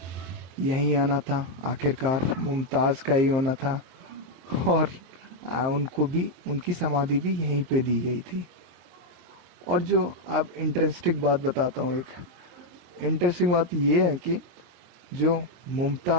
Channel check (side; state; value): left; late; 23 ms